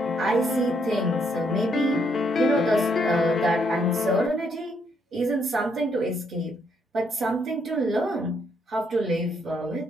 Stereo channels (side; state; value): both; normal; correlation 0.73